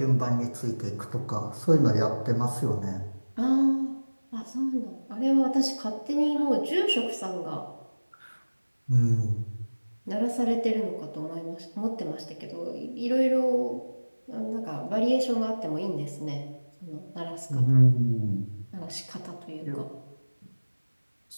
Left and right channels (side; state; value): both; inverted; correlation -1.00